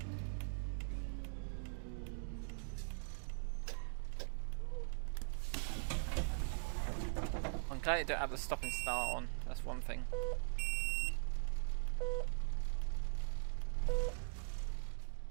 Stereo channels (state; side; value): silent; left; digital silence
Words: I'm glad you don't have the stop and start on, that's one thing.